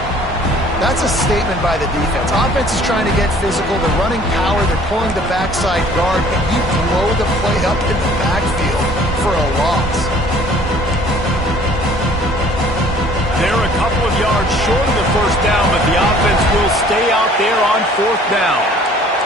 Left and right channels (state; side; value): normal; both; correlation 0.54